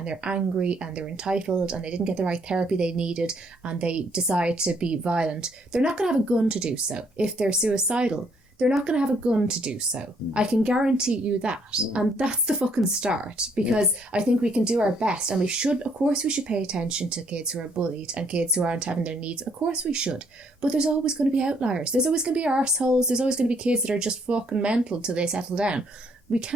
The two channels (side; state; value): both; normal; correlation 0.68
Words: they're angry and they're entitled and they didn't get the right therapy they needed and they decide to be violent, they're not going to have a gun to do so. If they're suicidal, they're not going to have a gun to do so. I can guarantee you that. And that's the fucking start, because I think we can do our best, and we should, of course, we should pay attention to kids who are bullied and kids who aren't having their needs. Of course we should. But there's always going to be outliers. There's always going to be arseholes. There's always going to be kids that are just fucking mental till they settle down. We